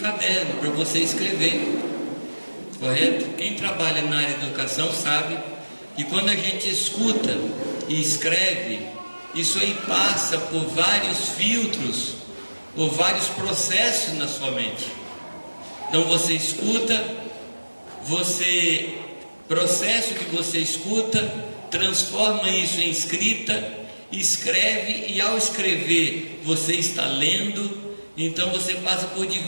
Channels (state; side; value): inverted; both; correlation -1.00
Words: para você escrever, correto? Quem trabalha na área de educação sabe que quando a gente escuta e escreve, isso aí passa por vários filtros, por vários processos na sua mente. Então você escuta, processo que você escuta, transforma isso em escrita, escreve, e ao escrever você está lendo. Então você passa por